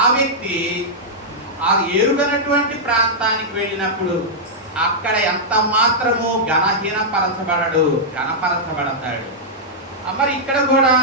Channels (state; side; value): normal; both; correlation -0.09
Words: వ్యక్తి ఆ ఎరుగనటువంటి ప్రాంతానికి వెళ్ళినప్పుడు అక్కడ ఎంత మాత్రము ఘనహీనపరచబడడు, ఘనపరచబడతాడు. మరి ఇక్కడ కూడా